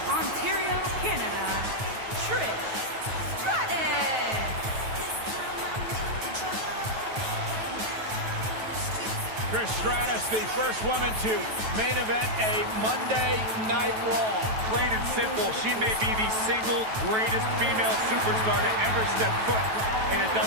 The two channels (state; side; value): late; left; 9.2 ms